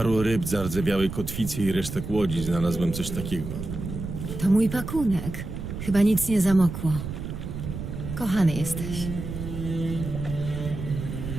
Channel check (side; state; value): right; noise; rumble, 7 dB below the sound